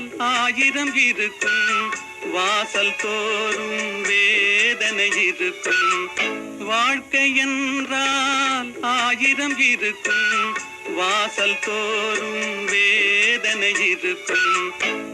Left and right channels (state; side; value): identical; both; correlation 1.00